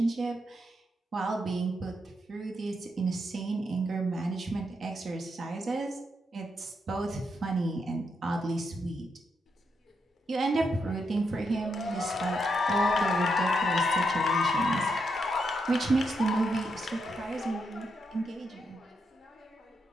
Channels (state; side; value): normal; both; correlation 0.81